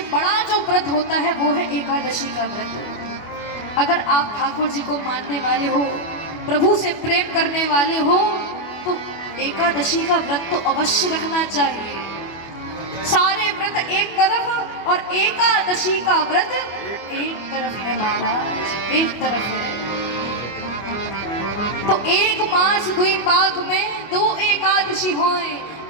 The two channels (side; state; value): right; late; 24 ms